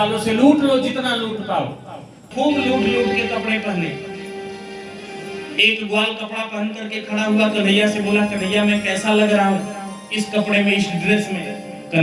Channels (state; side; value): identical; both; correlation 1.00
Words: से लूट लो जितना लूट पाओ। खूब लूट लूट के कपड़े पहने। एक ग्वाल कपड़ा पहन करके खड़ा हुआ, कन्हैया से बोला कन्हैया मैं कैसा लग रहा हूँ इस कपड़े में, इस ड्रेस में?